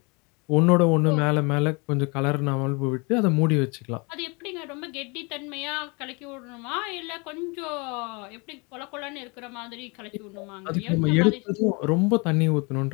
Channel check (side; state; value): right; quieter; 29.8 dB